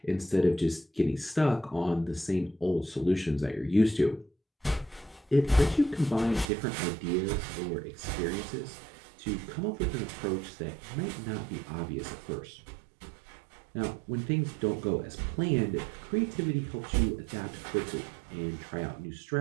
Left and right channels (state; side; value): drops out; left; at 6.5 s